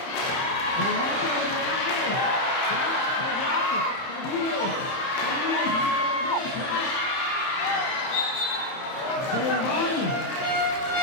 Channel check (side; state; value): right; late; 30 ms